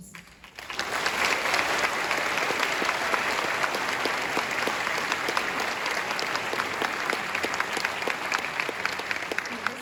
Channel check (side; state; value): both; identical; correlation 1.00